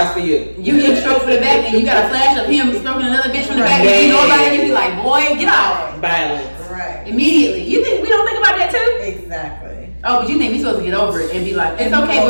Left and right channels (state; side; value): inverted; both; correlation -1.00